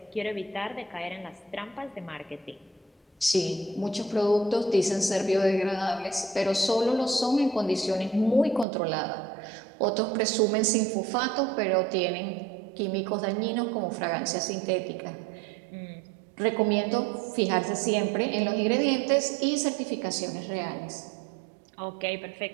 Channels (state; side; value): drops out; left; at 8.7 s